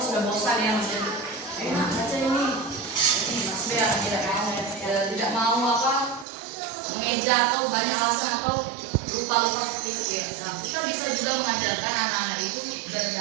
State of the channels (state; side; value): drops out; left; at 6.2 s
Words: sudah bosan ya maksudnya. kerja atau banyak alasan atau lupa seperti itu ya. Nah, kita bisa juga mengajarkan anak-anak itu